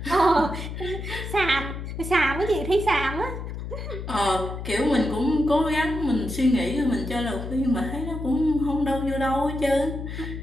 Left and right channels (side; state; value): left; noise; hum, 7 dB below the sound